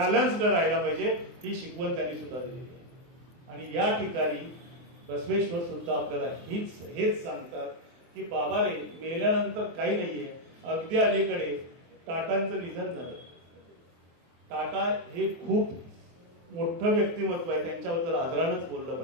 राहायला पाहिजे. ही शिकवण त्यांनी सुद्धा दिली आहे. आणि या ठिकाणी बसवेश्वर सुद्धा आपल्याला हेच सांगतात की बाबा रे, मेल्यानंतर काही नाहीये. अगदी अलीकडे टाटांचं निधन झालं. टाटा हे खूप मोठं व्यक्तिमत्व आहे, त्यांच्याबद्दल आदरानच बोललं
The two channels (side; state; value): left; late; 24 ms